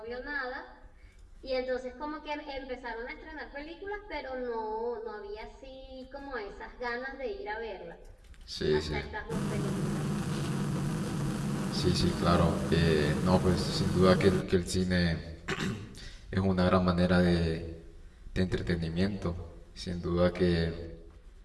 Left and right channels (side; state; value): both; identical; correlation 1.00